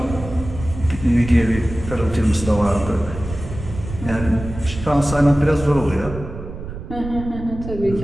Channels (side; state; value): right; noise; rumble, 10 dB below the sound